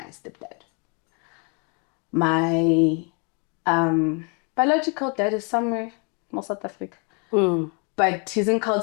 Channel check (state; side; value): quieter; right; 35.4 dB